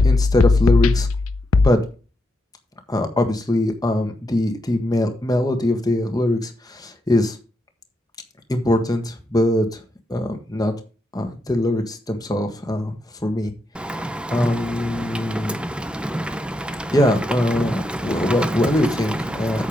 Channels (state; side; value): normal; both; correlation 0.83